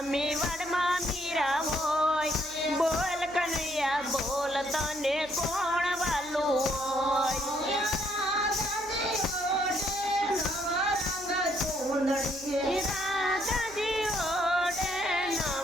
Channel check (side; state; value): right; noise; hum, 22 dB below the sound